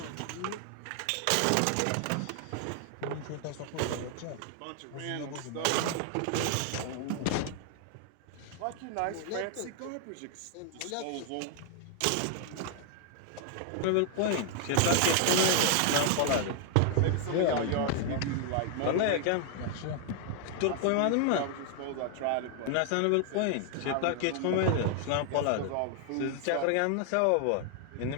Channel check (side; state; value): both; different; correlation 0.00